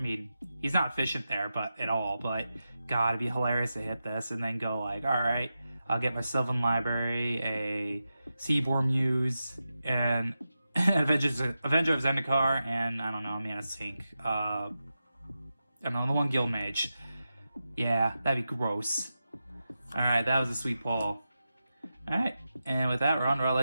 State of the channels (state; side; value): inverted; both; correlation -0.91